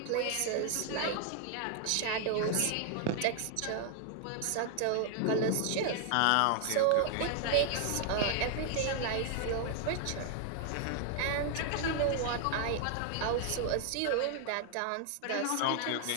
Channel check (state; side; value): different; both; correlation 0.00